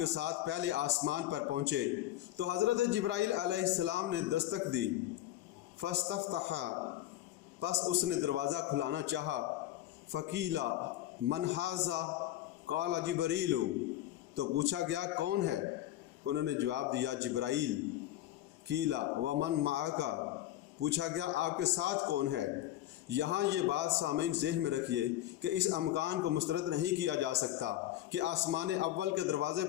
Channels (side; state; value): right; quieter; 13.8 dB